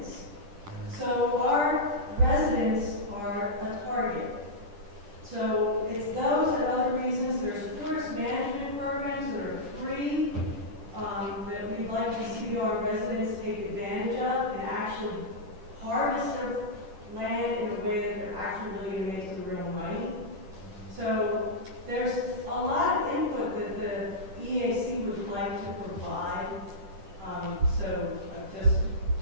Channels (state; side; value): late; left; 10 ms